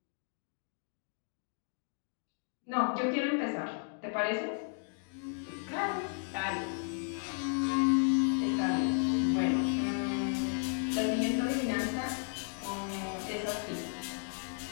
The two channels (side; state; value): right; silent; 55 dB below the other